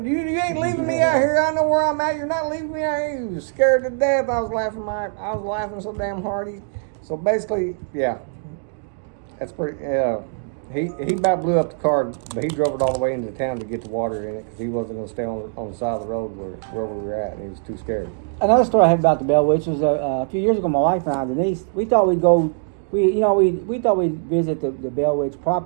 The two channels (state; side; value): silent; left; digital silence